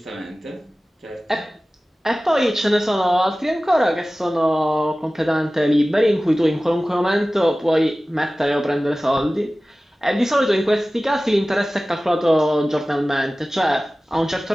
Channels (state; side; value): normal; both; correlation 0.97